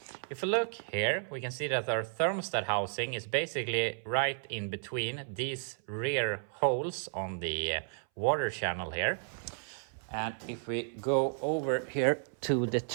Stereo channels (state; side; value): silent; left; 56 dB below the other